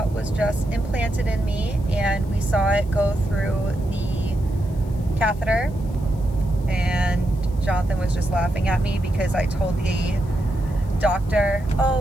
was just implanted in me, and we saw it go through the catheter. And Jonathan was just laughing at me because I told the doctor,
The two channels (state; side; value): noise; left; hiss, 27 dB below the sound